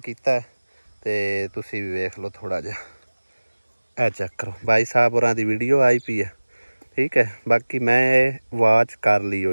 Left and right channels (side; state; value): both; inverted; correlation -1.00